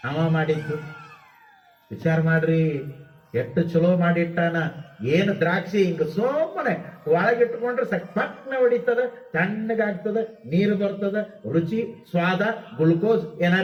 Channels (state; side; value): identical; both; correlation 1.00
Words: ಅವ ಮಾಡಿದ್ದು ವಿಚಾರ ಮಾಡ್ರಿ, ಎಷ್ಟು ಚಲೋ ಮಾಡಿಟ್ಟಾನ. ಏನು ದ್ರಾಕ್ಷಿ ಹಿಂಗ ಸುಮ್ಮನೆ ಒಳಗಿಟ್ಕೊಂಡ್ರೆ ಪಟ್ನ ಹೊಡಿತದ, ತಣ್ಣಗಾಗ್ತದ, ನೀರು ಬರ್ತದ, ರುಚಿ ಸ್ವಾದ ಗ್ಲುಕೋಸ್